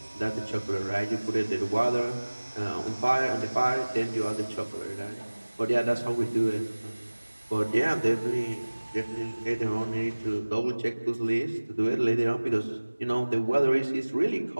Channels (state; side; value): inverted; both; correlation -1.00